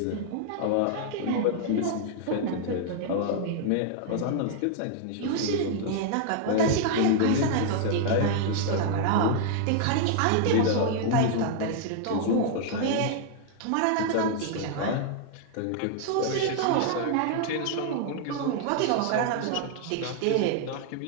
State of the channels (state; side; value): different; both; correlation -0.01